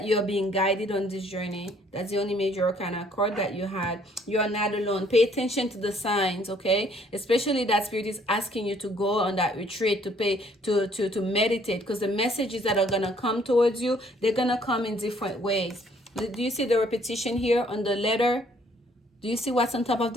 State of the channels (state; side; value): normal; both; correlation 0.63